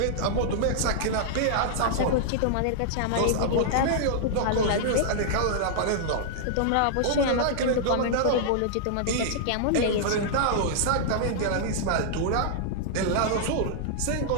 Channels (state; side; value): different; both; correlation -0.01